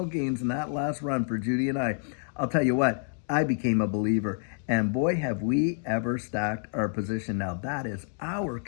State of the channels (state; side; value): silent; right; 57 dB below the other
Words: gains in that last run for Judy and I'll tell you what, I became a believer. And boy, have we ever stacked our position. Now, that is our